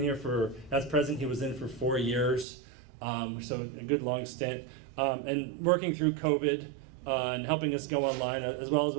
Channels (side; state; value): left; drops out; at 2.5 s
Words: as president, he was in for 4 years. So a good long stint. And working through COVID and helping us go online, as well as